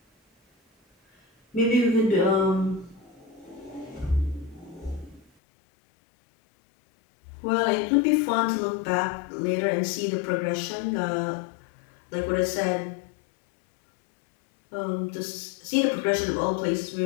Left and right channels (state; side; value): drops out; right; at 5.2 s